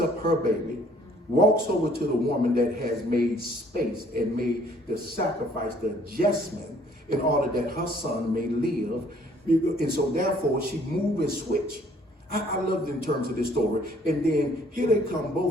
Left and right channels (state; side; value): normal; both; correlation 0.60